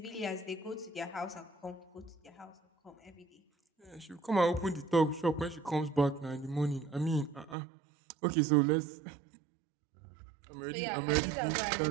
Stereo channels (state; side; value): drops out; left; at 7.6 s